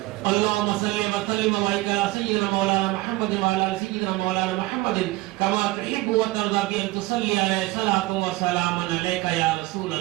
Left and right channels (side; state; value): left; quieter; 20.0 dB